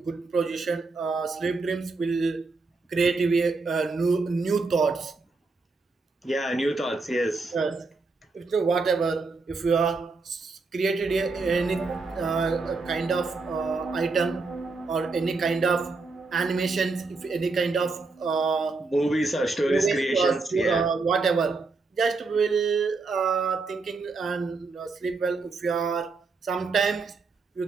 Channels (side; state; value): left; quieter; 4.0 dB